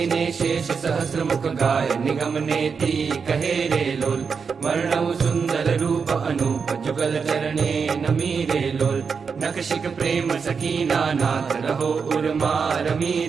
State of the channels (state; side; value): quieter; left; 5.7 dB